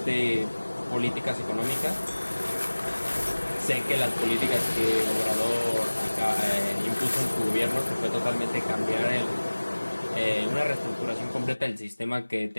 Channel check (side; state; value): both; inverted; correlation -1.00